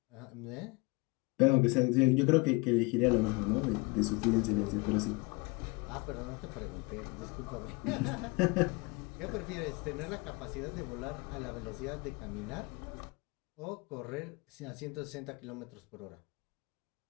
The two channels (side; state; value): right; quieter; 27.0 dB